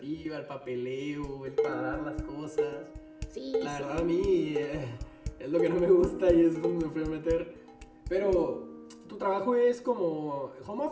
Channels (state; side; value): identical; both; correlation 1.00